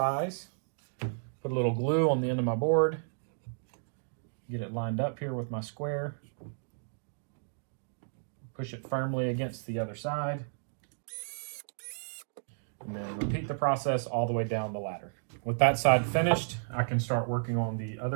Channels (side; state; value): left; silent; digital silence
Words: Put a little glue on the end of my board. Get it lined up here with my square. Push it firmly against the other side. And then repeat the process all the way down the ladder. With that side finished, I can start working on the